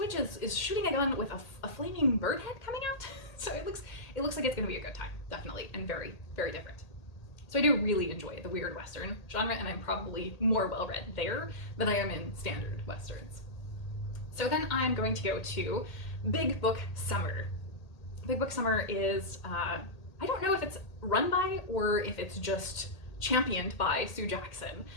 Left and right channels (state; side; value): late; right; 1.8 ms